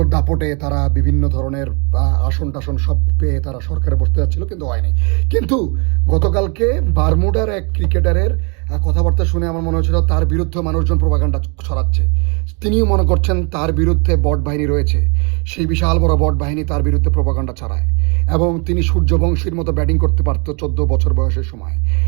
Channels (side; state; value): left; quieter; 33.9 dB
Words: দাপটে তারা বিভিন্ন ধরনের আসন টাসন সব পেয়ে তারা সরকারে বসতে যাচ্ছিল, কিন্তু হয়নি। কিন্তু গতকালকে বারমুডার এক ক্রিকেটারের কথাবার্তা শুনে আমার মনে হচ্ছিল তার বিরুদ্ধে মানুষজন প্রোপাগান্ডা ছড়াচ্ছে। তিনিও মনে করছেন তার বিরুদ্ধে বট বাহিনী রয়েছে, সেই বিশাল বড় বট বাহিনী তার বিরুদ্ধে প্রোপাগান্ডা ছড়ায়, এবং তিনি সূর্যবংশীর মতো ব্যাটিং করতে পারতো 14 বছর বয়সের সময়।